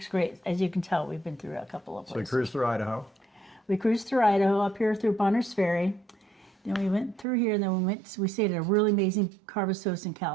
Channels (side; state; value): left; drops out; at 7.2 s